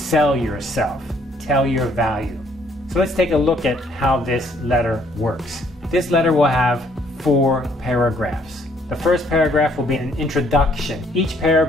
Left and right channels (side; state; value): both; normal; correlation 0.65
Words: yourself, tell your value. So let's take a look at how this letter works. This letter will have 4 paragraphs. The first paragraph will be an introduction. Each